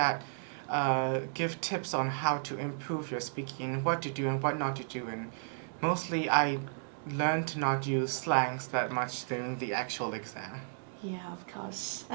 give tips on how to improve your speaking, what to do and what not to do. And mostly I learned to not use slangs that much during the actual exam. Yeah, of course.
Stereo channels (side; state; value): left; silent; digital silence